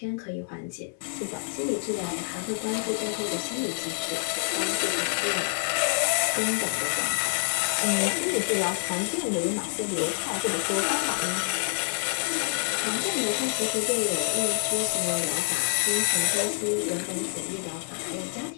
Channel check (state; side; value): silent; right; digital silence